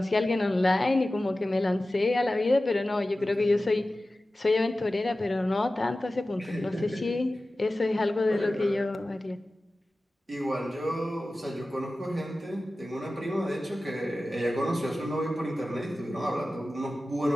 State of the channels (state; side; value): normal; both; correlation 0.95